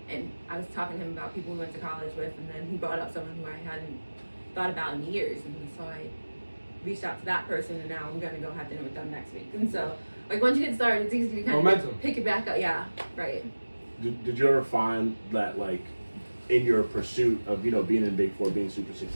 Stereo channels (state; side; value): inverted; both; correlation -1.00